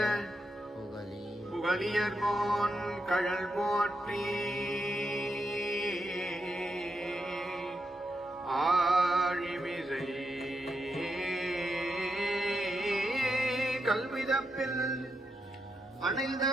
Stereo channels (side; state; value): both; normal; correlation 0.84